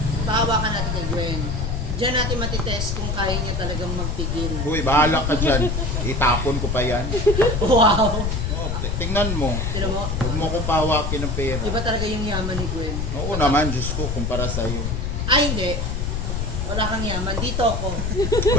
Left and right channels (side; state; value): left; noise; rumble, 1 dB below the sound